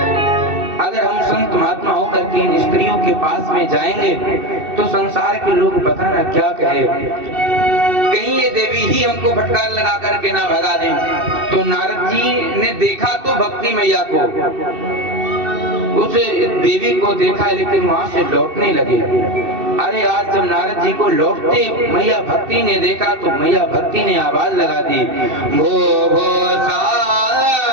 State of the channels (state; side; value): late; left; 2.6 ms